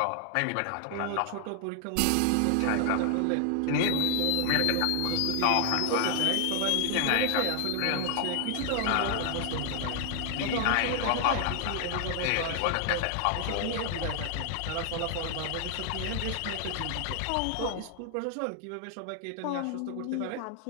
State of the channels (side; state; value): both; different; correlation 0.00